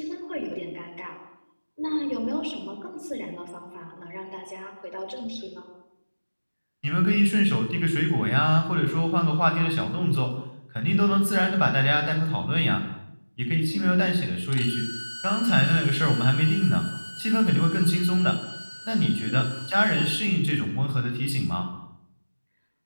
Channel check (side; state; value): both; inverted; correlation -1.00